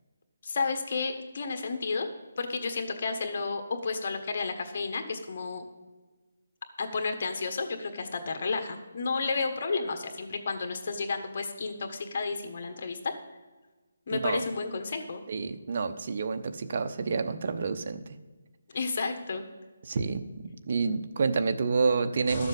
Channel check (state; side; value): inverted; both; correlation -0.82